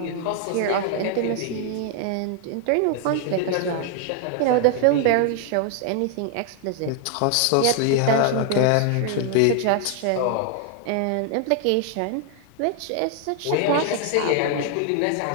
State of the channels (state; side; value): different; both; correlation 0.00